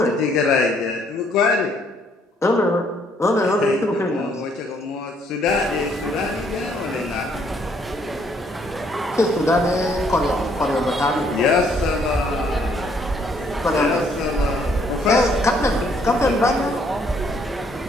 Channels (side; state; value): both; normal; correlation 0.67